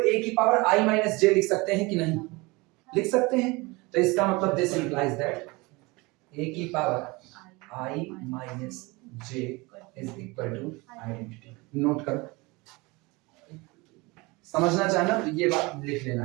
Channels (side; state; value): left; quieter; 24.6 dB